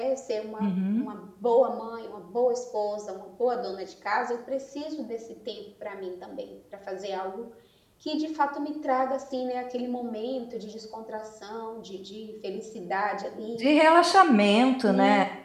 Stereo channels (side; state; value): both; identical; correlation 1.00